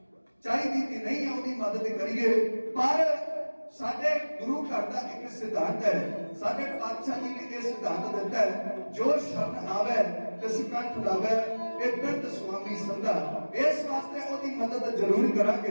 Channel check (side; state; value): both; inverted; correlation -1.00